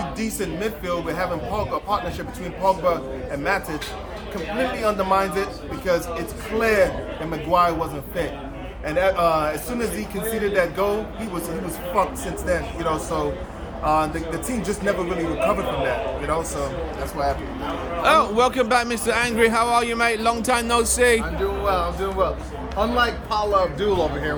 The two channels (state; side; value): identical; both; correlation 1.00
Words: decent midfield with having Pogba, a partnership between Pogba and Matic. Completely undermines it because it's clear that Maguire wasn't fit. And as soon as he conceded that goal, he was fucked since then. You know, so the team just never really recovered from that. You know, so that's what happened. Oh, welcome back, Mr. Angry. How are you, mate? Long time no see. I'm doing well. Unlike Paula Abdul over